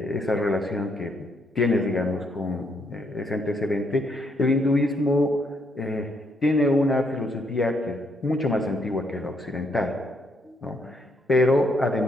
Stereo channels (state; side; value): normal; both; correlation 0.74